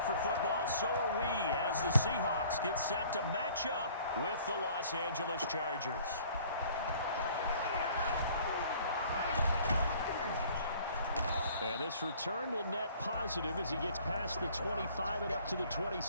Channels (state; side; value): inverted; both; correlation -0.53